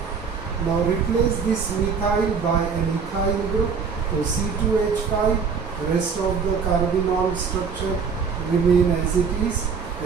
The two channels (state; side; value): quieter; left; 5.8 dB